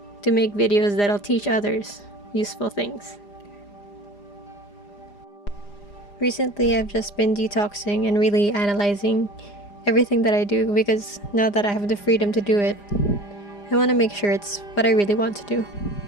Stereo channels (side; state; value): right; late; 4.9 ms